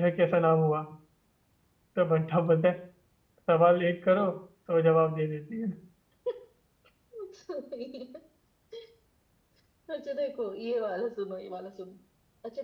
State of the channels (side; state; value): both; identical; correlation 1.00